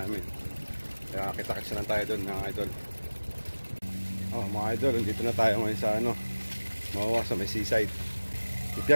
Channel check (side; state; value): both; inverted; correlation -1.00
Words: Kaya kita-kits na tayo doon mga idol. Oh mga idol, dito na tayo ngayon sa ano, Mawa sa may seaside. Dito